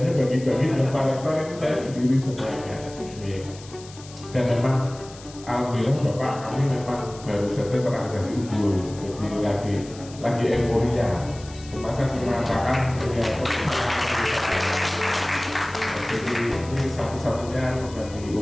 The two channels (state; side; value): noise; left; hiss, 19 dB below the sound